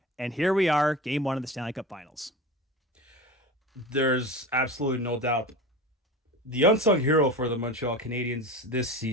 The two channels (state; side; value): normal; both; correlation 0.30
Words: And here we are, Game 1 of the Stanley Cup Finals. There's absolutely no doubt. The unsung hero for the Montreal Canadiens this